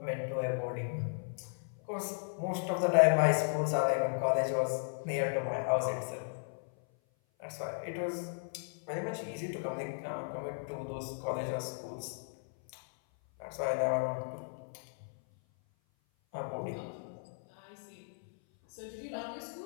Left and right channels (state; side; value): silent; right; 54 dB below the other